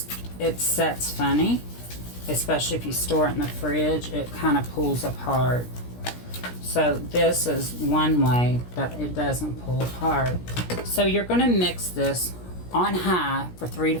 sets funny, especially if you store it in the fridge. It kind of pulls apart. So this is one way that it doesn't pull apart. So you're going to mix this on high for 3 to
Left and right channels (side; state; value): right; late; 17 ms